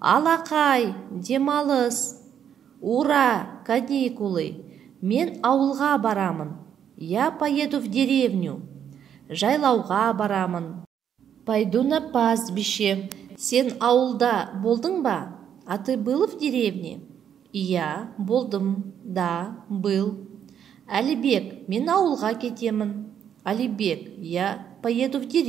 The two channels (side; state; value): left; quieter; 8.9 dB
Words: Алақай, демалыс. Ура, каникулы. Мен ауылға барамын. Я поеду в деревню. Жайлауға барамын. Пойду на пастбище. Сен ауылда болдың ба? А ты был в деревне? Я болдым. Да, был. Әлібек, мен ауылға кетемін. Алибек, я поеду в